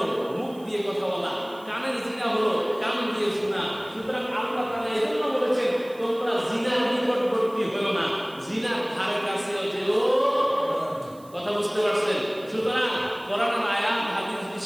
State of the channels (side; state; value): right; noise; hiss, 26 dB below the sound